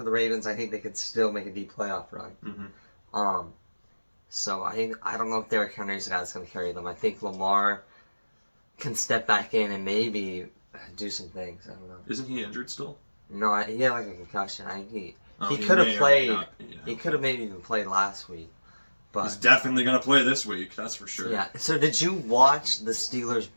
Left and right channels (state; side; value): inverted; both; correlation -1.00